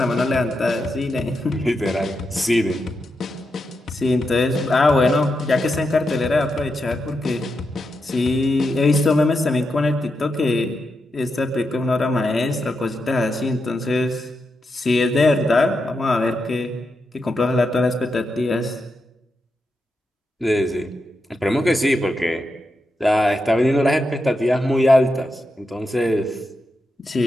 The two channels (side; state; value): both; normal; correlation 0.86